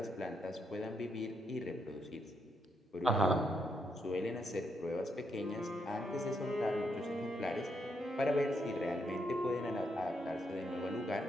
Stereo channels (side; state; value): both; normal; correlation 0.78